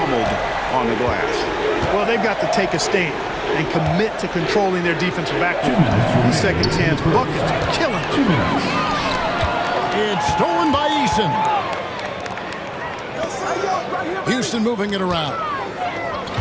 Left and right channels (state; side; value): identical; both; correlation 1.00